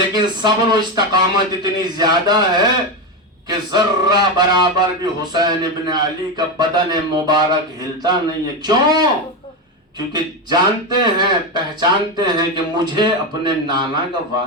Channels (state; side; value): normal; both; correlation 0.13